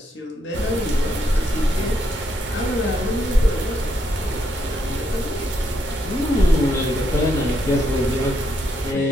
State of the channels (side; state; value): both; normal; correlation 0.77